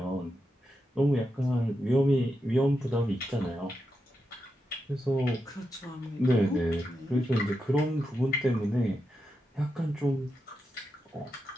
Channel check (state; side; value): normal; both; correlation 0.87